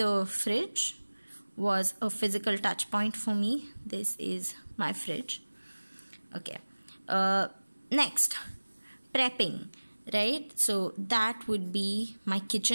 fridge was a physical touch point for me. This is my fridge. Okay. Next, prepping, right? So that would be my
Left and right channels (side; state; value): both; inverted; correlation -1.00